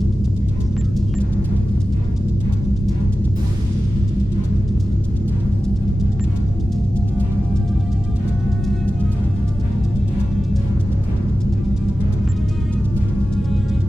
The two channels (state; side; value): normal; both; correlation 0.94